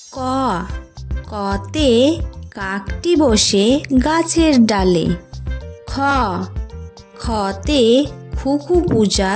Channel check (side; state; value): both; identical; correlation 1.00